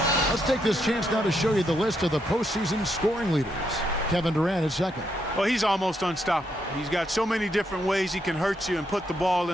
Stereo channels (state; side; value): normal; both; correlation 0.78